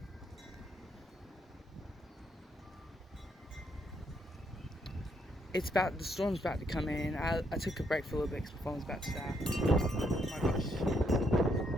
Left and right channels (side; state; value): both; normal; correlation 0.74